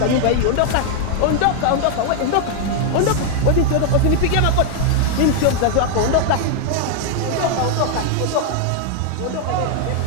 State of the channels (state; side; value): different; both; correlation 0.00